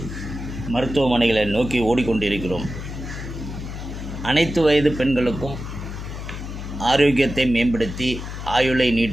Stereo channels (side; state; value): left; noise; hum, 8 dB below the sound